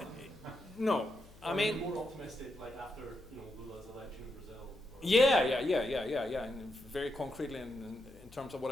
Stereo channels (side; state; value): left; noise; hum, 22 dB below the sound